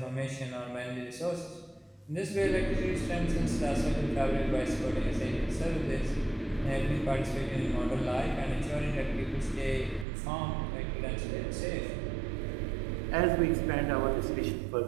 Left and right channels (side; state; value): left; drops out; at 10.1 s